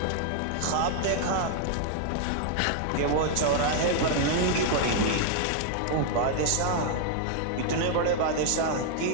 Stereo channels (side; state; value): both; different; correlation 0.00